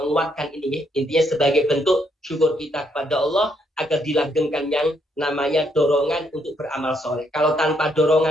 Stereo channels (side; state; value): both; normal; correlation 0.74